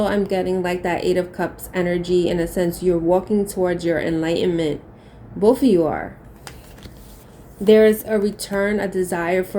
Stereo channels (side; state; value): both; identical; correlation 1.00